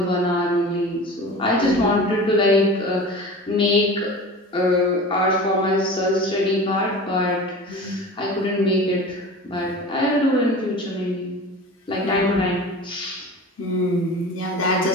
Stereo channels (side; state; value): both; normal; correlation 0.36